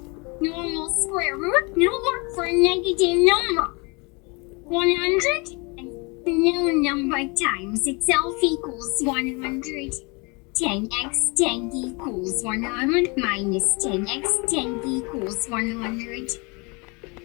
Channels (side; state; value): right; quieter; 29.6 dB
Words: Normal square root no work for a negative number. 100 and no number times itself equals 100. 10x 10 equals 100 minus 10x 10 equals 100.